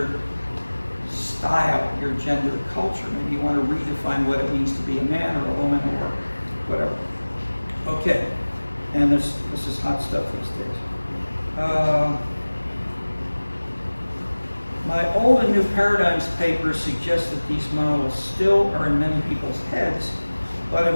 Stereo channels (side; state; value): both; inverted; correlation -1.00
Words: style, your gender culture. Maybe you want to redefine what it means to be a man or a woman or whatever. Okay, and this is hot stuff these days. My Old and New Paradigms paper suggests that these models still are in many people's heads, but